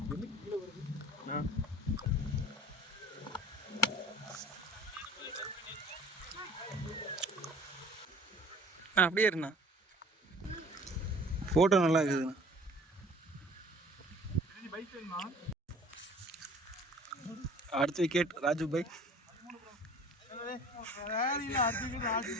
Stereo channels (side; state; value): both; normal; correlation 0.48